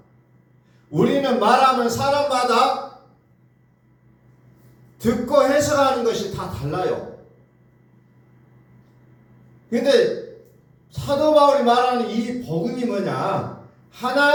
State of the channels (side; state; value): both; identical; correlation 1.00